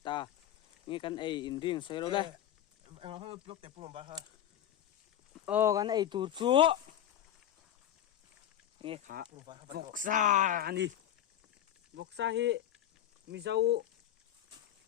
nge kan ei in ring soi ro le anh nói blog để punom ba ha o kan ei tur chu nge kha voksa ni voksa hi mi zau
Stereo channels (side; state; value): right; quieter; 11.1 dB